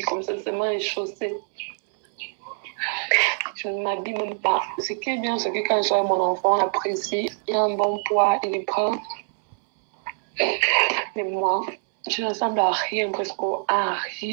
comme ça, c'est moi chaussée. Je ne m'habille même pas. Ce qui est bien, c'est que quand je suis avec mon enfant, on apprécie, il a un bon poids, il est prend. Mais moi, je ne ressemble à rien, presque à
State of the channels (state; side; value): silent; left; 62 dB below the other